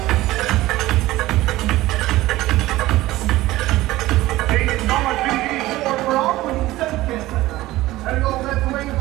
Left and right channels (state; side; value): quieter; left; 17.2 dB